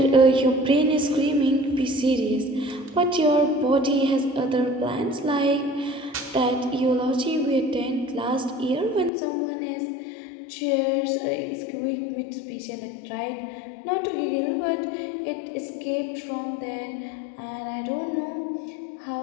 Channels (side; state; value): right; drops out; at 9.1 s